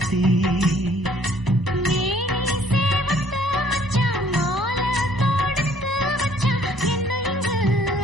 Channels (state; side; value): normal; both; correlation 0.60